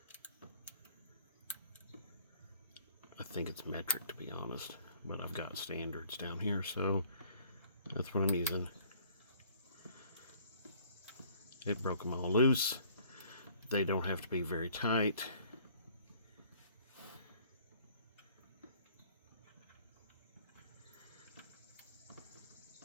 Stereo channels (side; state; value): both; inverted; correlation -0.57